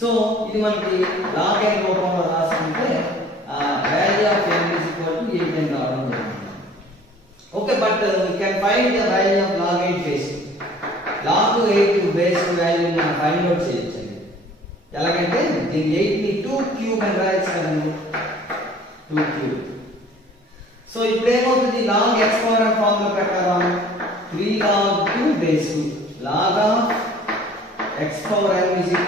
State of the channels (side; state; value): both; normal; correlation 0.51